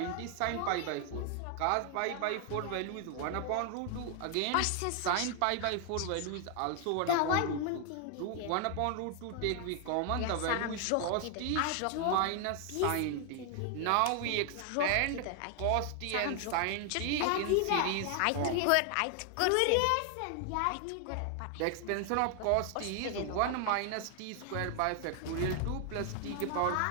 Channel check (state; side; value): different; both; correlation 0.00